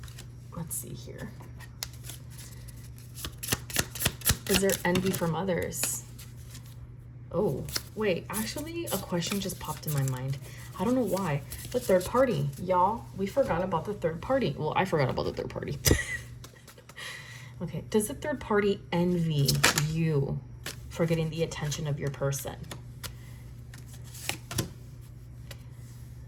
see here. Is there envy from others? Oh, wait, actually a question just popped in my mind. I don't know why. The third party. Y'all, we forgot about the third party. Well, I forgot about the third party. Okay, does the third party envy you for getting the attention of your person?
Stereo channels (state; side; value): identical; both; correlation 1.00